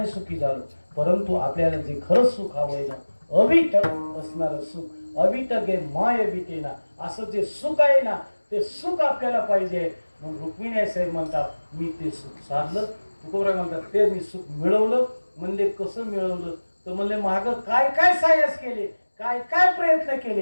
सुखी झालो. परंतु आपल्याला जे खरंच सुख हवंय ना, अविट असणारं सुख, अविट गे माय बिटेना, असं जे सुख आहे ना ते सुख आपल्याला पाहिजे. म्हणून रुक्मिणी साहेब म्हणतात, मी ते सुख साधलं. तुकोबराय म्हणतात, ते मी सुख मिळवलं. म्हणले कसं मिळवलं तर म्हणले मागं काय काय सायस केले, काय काय प्रयत्न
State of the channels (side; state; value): both; inverted; correlation -1.00